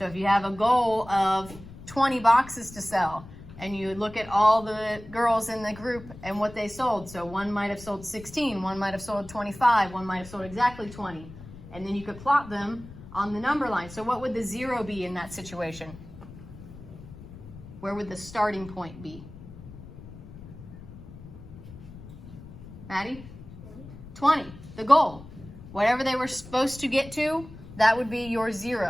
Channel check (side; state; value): left; noise; rumble, 16 dB below the sound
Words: if you have a goal of 20 boxes to sell, and you look at all the girls in the group and what they sold. So one might have sold 16, one might have sold 25, one might have sold exactly 20. And then you could plot them on the number line. So what would the 0 be in that situation? Where would the starting point be? Maddie? 20, the goal. Whatever they were supposed to get to, that would be your